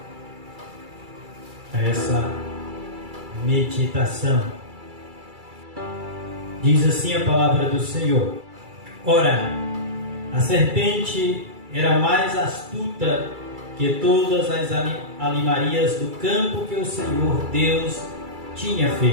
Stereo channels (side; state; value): left; late; 2.3 ms